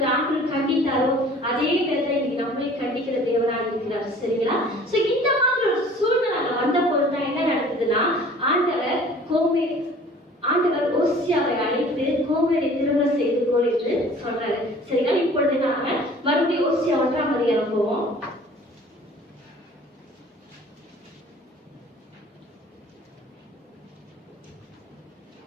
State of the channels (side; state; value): both; normal; correlation 0.49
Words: ஆண்டவர் கண்டித்தாரோ அதே விதத்தை இன்னைக்கு நம்மளே கண்டிக்கிற தேவனாக இருக்கிறார். சரிங்களா? சோ இந்த மாதிரி ஒரு சூழ்நிலை வந்த போதுதான் என்ன நடக்குதுன்னா ஆண்டவர் ஓசியாவை அழைத்து கோமேரை திருமணம் செய்து கொள் என்று சொல்றாரு. சரிங்களா? இப்பொழுது நாம மறுபடியும் ஓசியா 1ஆம் அதிகாரம் போவோம்.